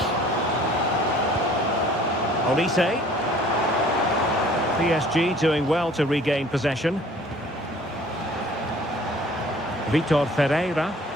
Olise. PSG doing well to regain possession. Vitor Ferreira.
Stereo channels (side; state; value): both; normal; correlation 0.52